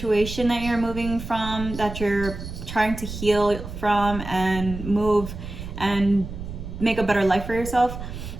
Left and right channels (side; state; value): right; noise; rumble, 9 dB below the sound